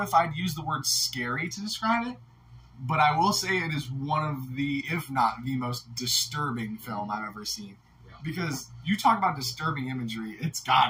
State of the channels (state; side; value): identical; both; correlation 1.00